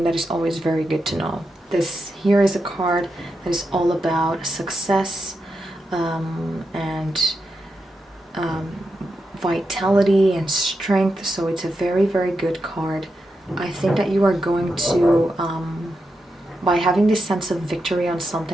that is always very good to know. This here is a card that is all about success and vitality and strength, so it's a very good card. I think that you are going to, by having this sense of victory on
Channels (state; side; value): normal; both; correlation 0.87